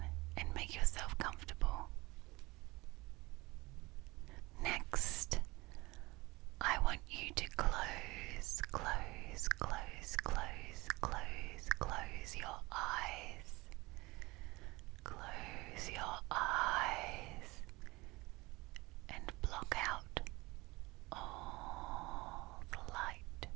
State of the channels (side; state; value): left; quieter; 22.3 dB